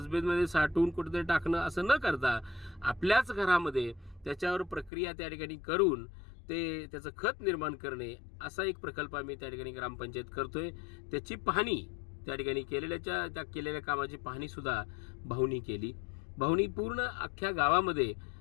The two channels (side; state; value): right; drops out; at 4.9 s